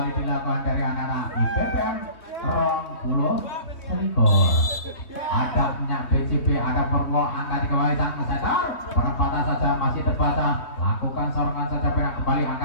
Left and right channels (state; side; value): late; right; 3.2 ms